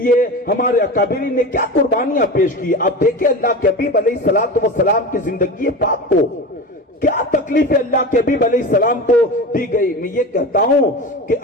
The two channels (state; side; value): normal; both; correlation 0.28